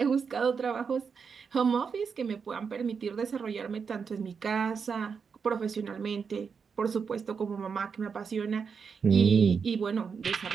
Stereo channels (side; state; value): left; quieter; 6.0 dB